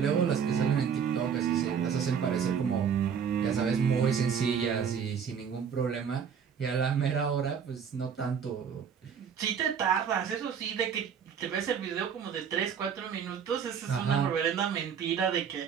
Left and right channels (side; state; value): left; quieter; 7.3 dB